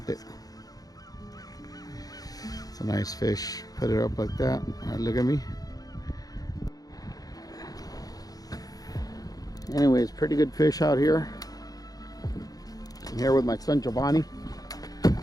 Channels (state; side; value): late; right; 0.18 ms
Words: it. It's a nice fish. Put it up like that. All right, look at me. Anyways, pretty good fish out here. I'm here with my son Jovani.